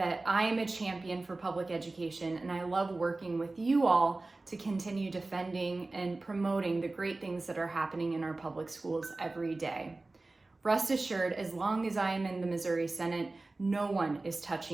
I am a champion for public education, and I love working with you all to continue defending and promoting the great things that are happening in our public schools every day. Rest assured, as long as I am in the Missouri Senate, no one is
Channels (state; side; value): quieter; left; 3.2 dB